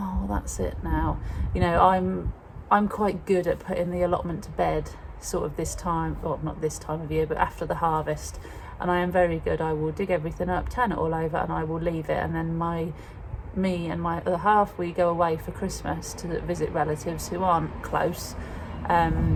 that's it now. You know, I'm quite good at putting the allotment to bed sort of this time, well, not this time of year, but after the harvest. And I am very good. I will dig everything up, turn it all over, and I will leave it. And then me and my other half, we go away for Christmas to visit relatives who aren't close.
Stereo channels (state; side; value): identical; both; correlation 1.00